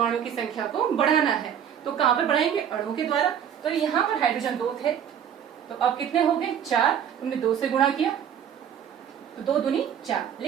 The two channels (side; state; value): left; quieter; 8.9 dB